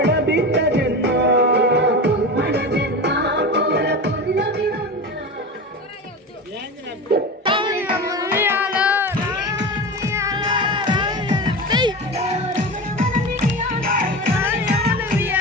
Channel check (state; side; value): normal; both; correlation 0.26